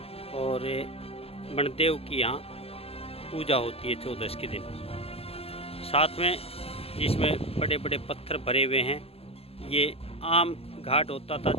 और बनदेव की यहाँ पूजा होती है 14 के दिन। साथ में जिसमें बड़े बड़े पत्थर भरे हुए हैं, ये आम घाट होता था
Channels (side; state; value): right; late; 0.29 ms